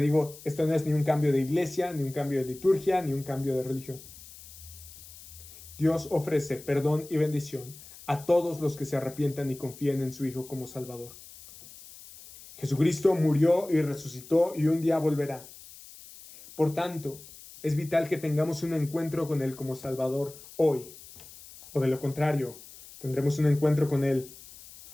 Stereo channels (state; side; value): noise; left; hiss, 18 dB below the sound